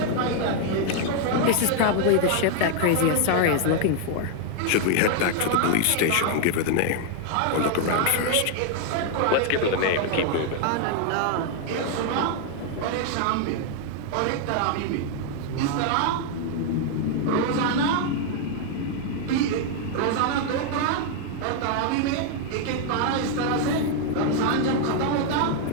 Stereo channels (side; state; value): both; different; correlation 0.00